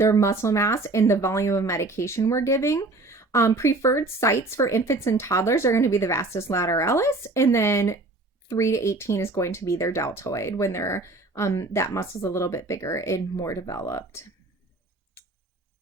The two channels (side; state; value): left; quieter; 3.1 dB